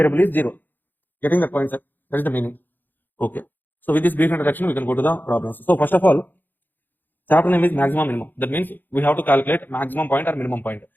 is 0. Getting the point, sir? That is the meaning. Okay. So with this brief introduction, we can go to the problems. So first of all, chapter name is maximum minimum. That means we have to calculate maximum point or minimum point.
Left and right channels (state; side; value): late; right; 0.089 ms